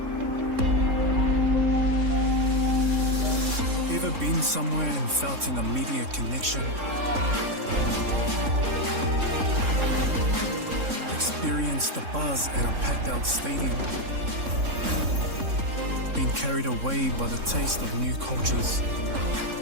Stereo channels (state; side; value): late; left; 3.6 ms